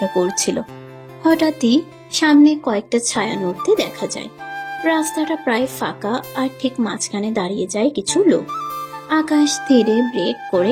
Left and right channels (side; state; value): both; identical; correlation 1.00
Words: করছিল। হঠাৎই সামনে কয়েকটা ছায়া নড়তে দেখা যায়। রাস্তাটা প্রায় ফাঁকা, আর ঠিক মাঝখানে দাঁড়িয়ে যায় কিছু লোক। আকাশ ধীরে ব্রেক